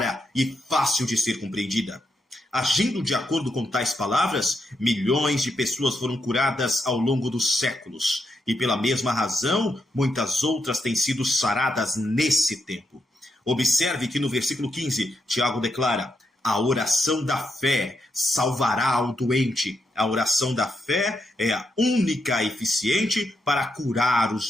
e fácil de ser compreendida. Agindo de acordo com tais palavras, milhões de pessoas foram curadas ao longo dos séculos, e pela mesma razão, muitas outras têm sido saradas nesse tempo. Observe que no versículo 15, Tiago declara: a oração da fé salvará o doente. A oração da fé é a única eficiente para curar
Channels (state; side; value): normal; both; correlation 0.81